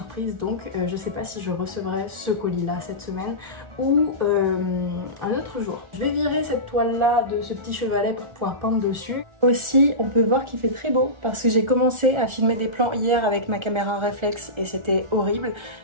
donc je sais pas si je recevrai ce colis là cette semaine ou un autre jour. Je vais virer cette toile là de ce petit chevalet pour pouvoir peindre dessus. Aussi on peut voir qu'il fait très beau parce que j'ai commencé à filmer des plans hier avec ma caméra réflexe et c'était horrible,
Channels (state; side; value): late; left; 1.4 ms